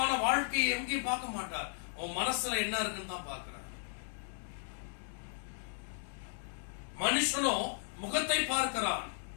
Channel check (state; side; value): silent; right; digital silence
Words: வாழ்க்கையை எங்கேயும் பார்க்க மாட்டார். உன் மனசுல என்ன இருக்குன்னு தான் பார்க்கிறார். மனுஷனோ முகத்தை பார்க்கிறான்,